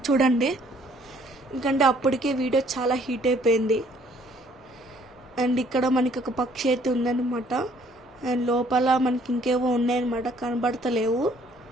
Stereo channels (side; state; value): both; normal; correlation 0.61